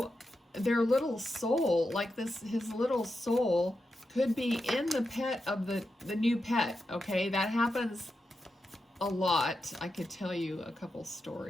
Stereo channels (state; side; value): normal; both; correlation 0.88